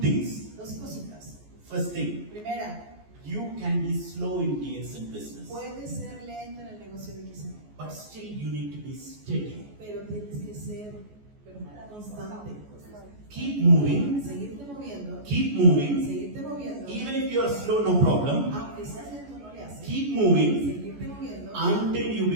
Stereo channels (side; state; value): left; late; 14 ms